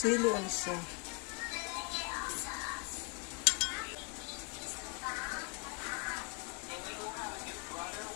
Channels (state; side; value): quieter; right; 31.9 dB